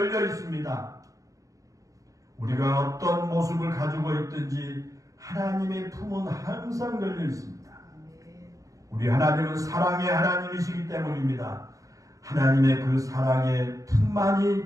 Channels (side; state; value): left; late; 0.16 ms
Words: 있습니다. 우리가 어떤 모습을 가지고 있든지 하나님의 품은 항상 열려 있습니다. 우리 하나님은 사랑의 하나님이시기 때문입니다. 하나님의 그 사랑의